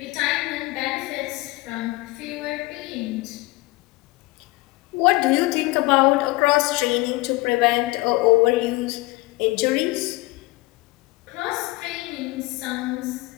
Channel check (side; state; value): right; quieter; 21.7 dB